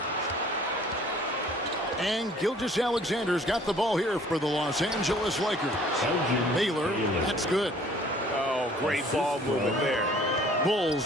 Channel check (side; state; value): both; normal; correlation 0.54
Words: And Gilgeous-Alexander's got the ball here for the Los Angeles Lakers. Baylor, that's good. Oh, great ball movement there. Bulls